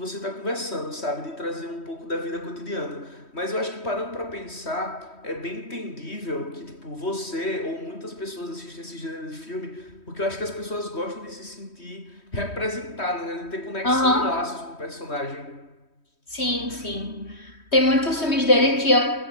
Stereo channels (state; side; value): late; right; 3.1 ms